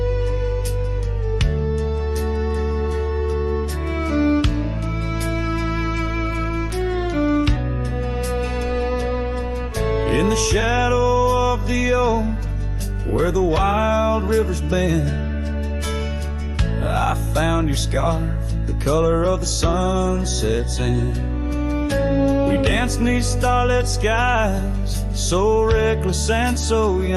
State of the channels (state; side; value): identical; both; correlation 1.00